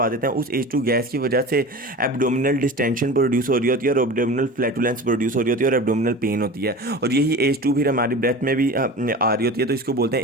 देते हैं। उस एच टू गैस की वजह से एब्डोमिनल डिस्टेंशन प्रोड्यूस हो रही होती है, और एब्डोमिनल फ्लैटुलेंस प्रोड्यूस हो रही होती है, और एब्डोमिनल पेन होती है, और यही एच टू फिर हमारी ब्रेथ में भी आ रही होती है, तो इसको बोलते हैं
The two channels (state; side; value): normal; both; correlation 0.34